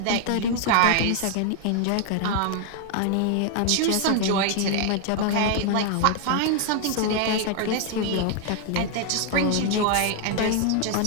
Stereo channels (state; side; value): different; both; correlation 0.00